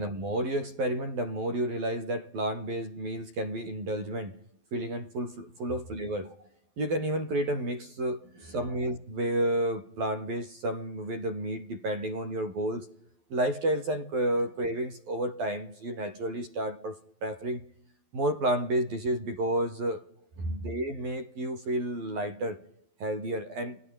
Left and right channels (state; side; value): late; left; 12 ms